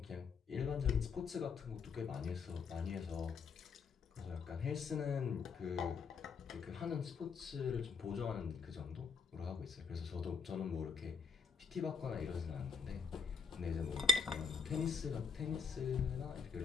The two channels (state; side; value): quieter; right; 5.4 dB